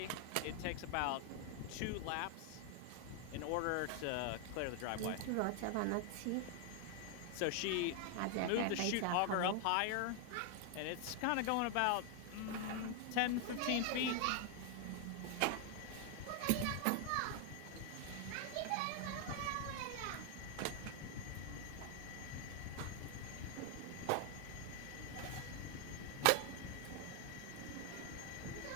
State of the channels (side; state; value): both; different; correlation 0.00